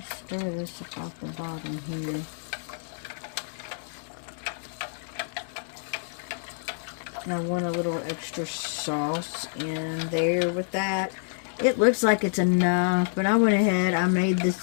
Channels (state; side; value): silent; right; digital silence